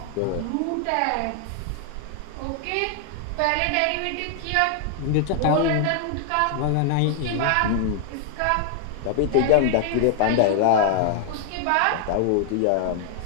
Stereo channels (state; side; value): different; both; correlation 0.00